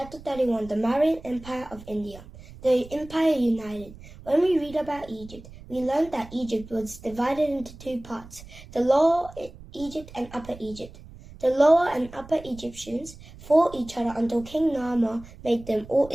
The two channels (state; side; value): noise; right; rumble, 18 dB below the sound